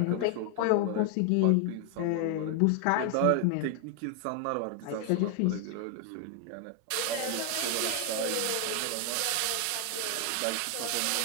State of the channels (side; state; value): both; different; correlation 0.00